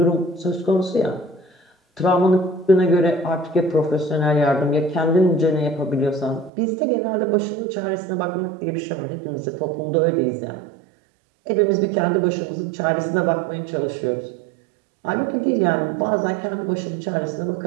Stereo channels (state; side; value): drops out; left; at 6.5 s